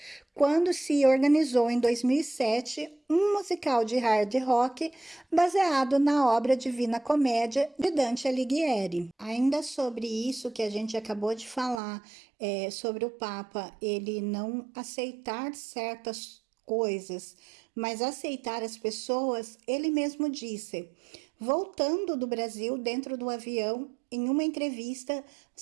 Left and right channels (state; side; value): drops out; left; at 11.8 s